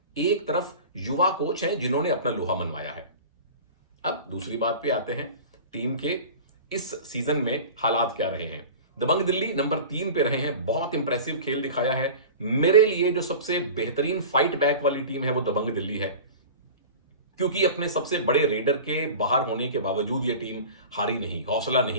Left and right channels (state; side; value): inverted; both; correlation -0.36